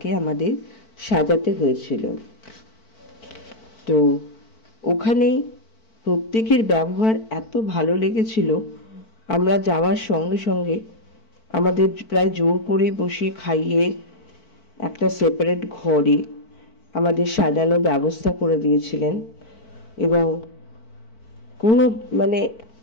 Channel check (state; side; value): late; right; 4.5 ms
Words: আমাদের সাজাতে হয়েছিল। তো ওখানে প্রত্যেকের ব্যবহার এত ভালো লেগেছিল, আমরা যাওয়ার সঙ্গে সঙ্গে আমাদের প্রায় জোর করে বসিয়ে খাইয়ে একটা সেপারেট ঘরে আমাদের সাজানোর ব্যবস্থা করে দিয়েছিলেন। এবং কোনো